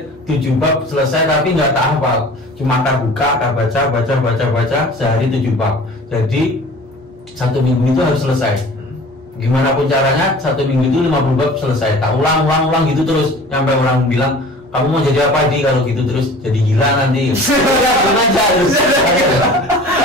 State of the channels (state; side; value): normal; both; correlation 0.43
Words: 7 bab selesai, tapi nggak tak hafal. Cuma tak buka, tak baca sehari 7 bab. Jadi 1 minggu itu harus selesai. Gimana pun caranya 1 minggu itu 50 bab selesai. Tak ulang gitu terus sampai orang bilang, kamu mau jadi apa di kalau gitu terus? Jadi gila nanti.